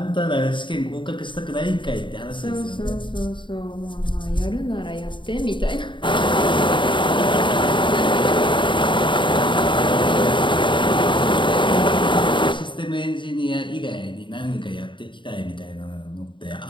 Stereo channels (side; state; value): right; late; 0.23 ms